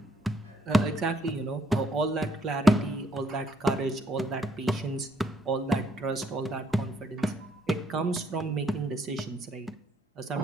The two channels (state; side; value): normal; both; correlation 0.69